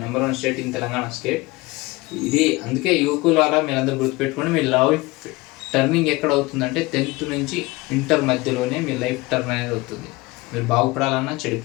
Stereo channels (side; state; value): right; quieter; 22.1 dB